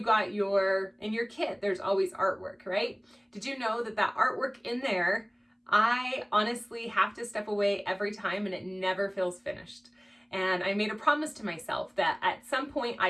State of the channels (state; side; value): identical; both; correlation 1.00